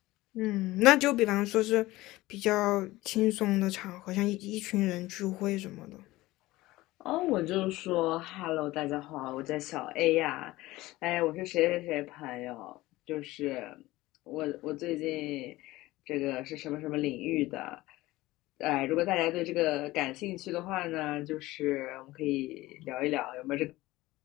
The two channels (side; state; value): right; quieter; 18.4 dB